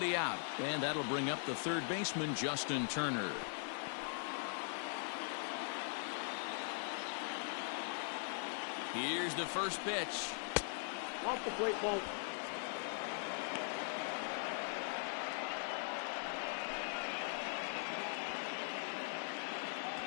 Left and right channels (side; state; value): right; silent; 50 dB below the other